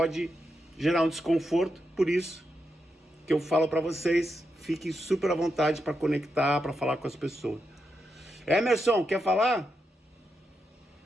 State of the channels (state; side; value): normal; both; correlation 0.85